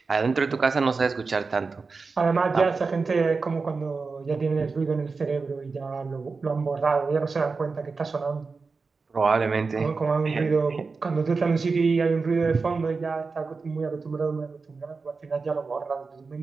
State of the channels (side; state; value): left; quieter; 4.4 dB